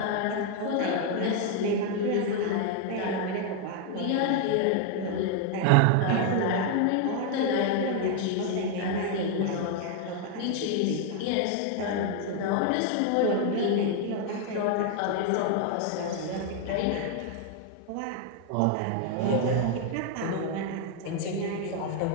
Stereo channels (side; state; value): both; different; correlation 0.00